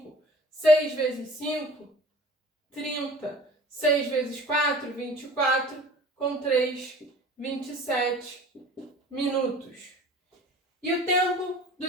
6 vezes 5, 30. 6 vezes 4, 24. Com 3, 27 minutos. E o tempo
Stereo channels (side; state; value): both; normal; correlation 0.45